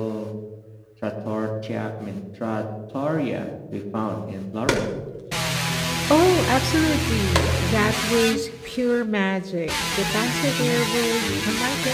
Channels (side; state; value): both; identical; correlation 1.00